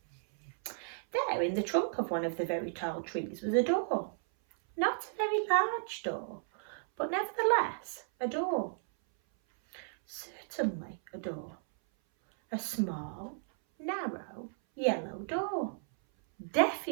There in the trunk of one of the very tall trees was a door. Not a very large door, but nevertheless a door. Certainly a door. A small, narrow, yellow door.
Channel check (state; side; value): silent; left; 55 dB below the other